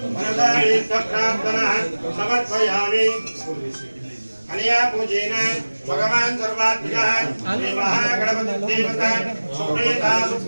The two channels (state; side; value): inverted; both; correlation -1.00